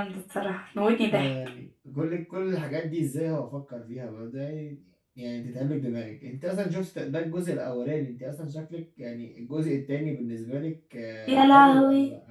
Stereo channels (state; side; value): identical; both; correlation 1.00